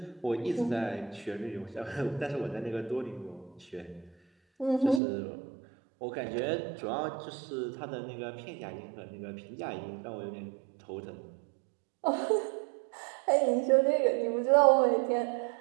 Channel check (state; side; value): drops out; left; at 5.0 s